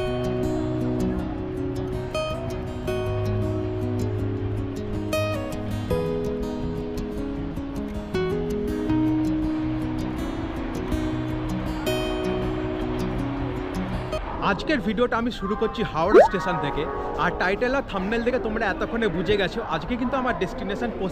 আজকের ভিডিওটা আমি শুরু করছি হাওড়া স্টেশন থেকে। আর টাইটেল আর থাম্বনেল দেখে তোমরা এতক্ষণে বুঝে গেছো আজকে কিন্তু আমার ডেস্টিনেশন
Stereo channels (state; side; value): identical; both; correlation 1.00